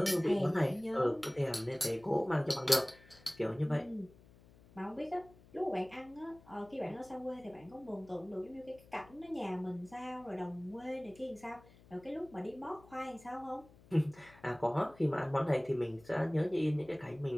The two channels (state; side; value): noise; left; hum, 24 dB below the sound